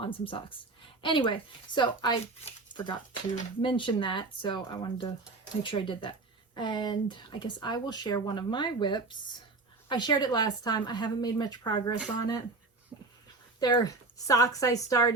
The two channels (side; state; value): left; quieter; 3.6 dB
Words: some socks. Anyway, so I forgot to mention that, so I wanted to make sure I did that. And I guess I will share one of my whips. I shared it last time. I haven't made much progress on it. They're socks I